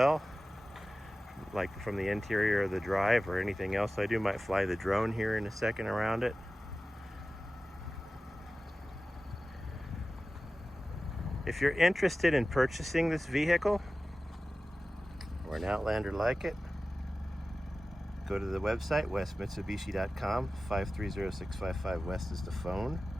like from the interior of the drive or anything else I do. Might fly the drone here in a second around it. If you're interested in purchasing this vehicle or an Outlander like it, go to the website, westmitsubishi.com. 530-655 West is the phone.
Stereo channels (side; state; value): both; normal; correlation 0.95